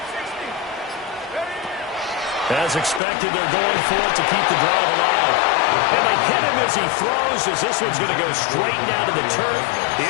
As expected, they're going for it to keep the drive alive. And they hit him as he throws, as this one's going to go straight down to the turf.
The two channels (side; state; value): right; drops out; at 3.0 s